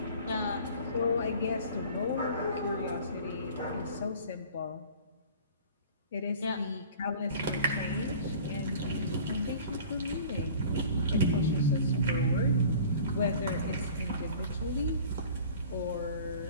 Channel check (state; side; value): inverted; both; correlation -0.45